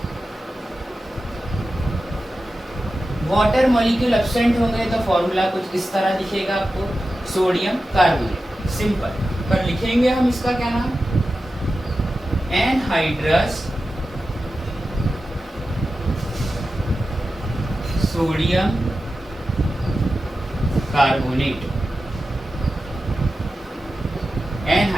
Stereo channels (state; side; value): normal; both; correlation 0.93